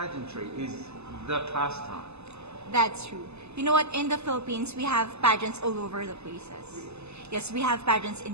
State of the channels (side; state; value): left; late; 0.80 ms